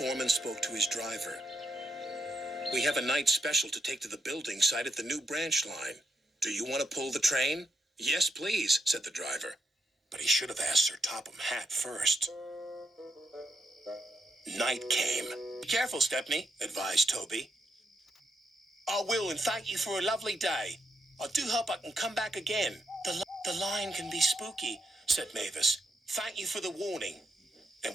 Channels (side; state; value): both; normal; correlation 0.81